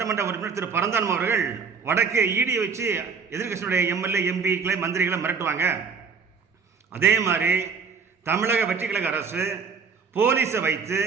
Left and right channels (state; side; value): quieter; left; 5.7 dB